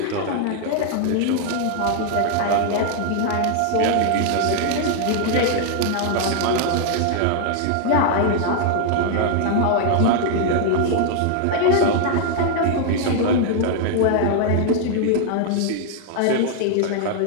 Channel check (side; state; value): both; different; correlation 0.00